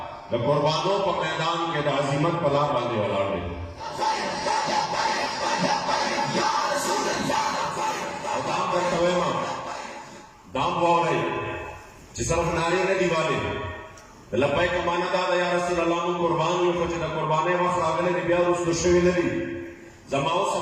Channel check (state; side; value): identical; both; correlation 1.00